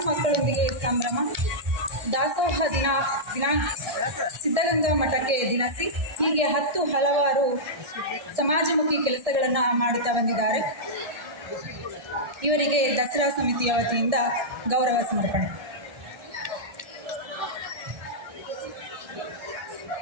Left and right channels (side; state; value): left; late; 1.6 ms